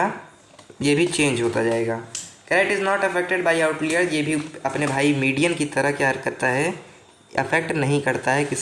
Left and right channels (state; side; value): identical; both; correlation 1.00